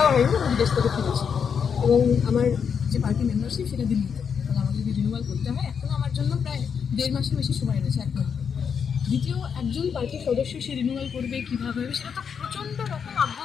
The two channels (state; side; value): quieter; right; 6.8 dB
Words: হয়নি আমি বিদেশ থেকে ফিরেছি এবং আমার যে পার্টি মেম্বারশিপ সেটা দিল্লিতে, এবং আমাকে যদি রিনিউয়াল করতে হয় এখনও আমার জন্য প্রায় 1.5 মাসের বেশি সময় রয়েছে, 1 মাস। দ্বিতীয় একজন পার্টির সদস্য সে রিনিউয়াল করবে কীভাবে হবে সেটা তো প্রচণ্ড রকম